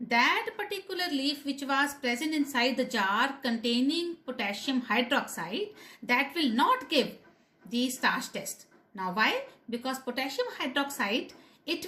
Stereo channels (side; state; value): both; identical; correlation 1.00